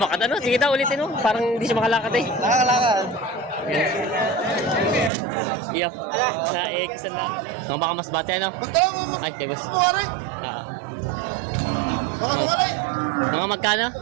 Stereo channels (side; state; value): left; drops out; at 5.1 s